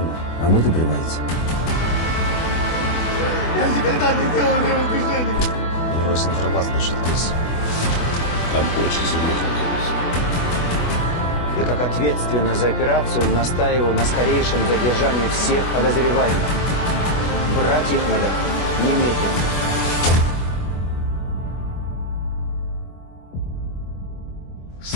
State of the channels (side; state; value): right; late; 24 ms